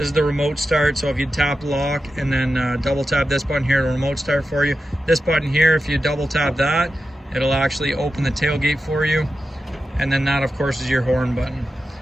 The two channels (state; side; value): normal; both; correlation 0.91